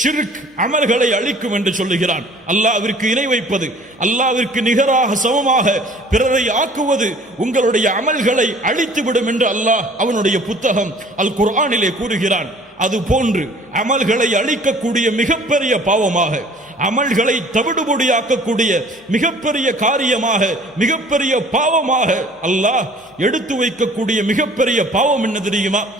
அமல்களை அழிக்கும் என்று சொல்லுகிறான். அல்லாஹ்விற்கு இணை வைப்பது, அல்லாஹ்விற்கு நிகராக சமமாக பிறரை ஆக்குவது உங்களுடைய அமல்களை அழித்துவிடும் என்று அல்லாஹ் அவனுடைய புத்தகம் அல் குர்ஆனிலே கூறுகிறான். அது போன்று அமல்களை அழிக்கக்கூடிய மிகப்பெரிய பாவமாக, அமல்களை தவிடுபொடியாக்கக்கூடிய மிகப்பெரிய காரியமாக, மிகப்பெரிய பாவமாக அல்லாஹ் எடுத்து வைக்கக்கூடிய மிகப்பெரிய பாவம் என்ன தெரியுமா?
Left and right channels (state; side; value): normal; both; correlation 0.51